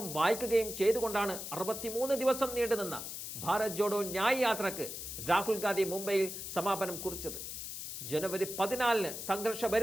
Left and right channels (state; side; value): noise; left; hiss, 7 dB below the sound